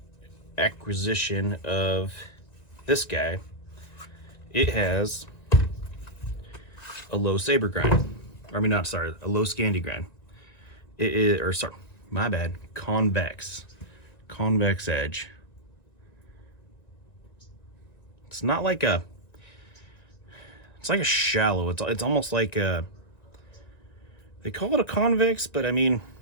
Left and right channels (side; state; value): right; late; 1.9 ms